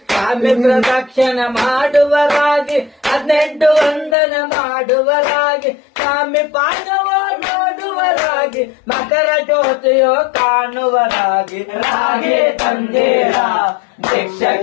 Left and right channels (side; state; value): right; drops out; at 4.2 s